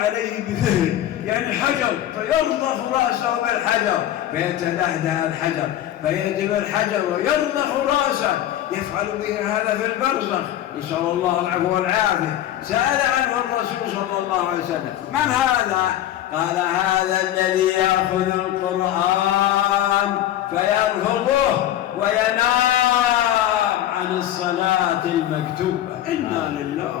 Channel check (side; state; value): right; quieter; 12.4 dB